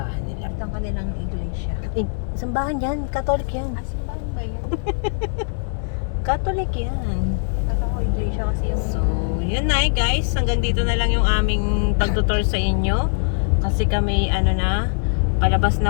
nila. Ito ang kanilang iglesia. Simbahan yan, Catholic yan. Simbahan ba yan? Catholic yan. Kata ko iglesia kasi yung... So, yun na eh guys. Hanggang dito na lang yung aming pagtutor sa inyo. Kasi kami, ano na, palabas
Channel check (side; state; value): right; silent; digital silence